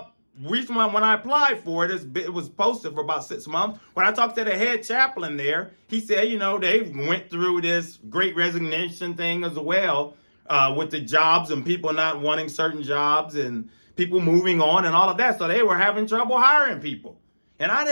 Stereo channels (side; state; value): both; inverted; correlation -1.00